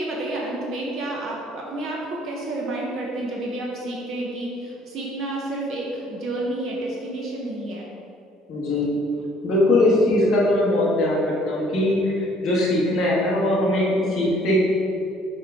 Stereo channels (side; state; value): both; normal; correlation 0.60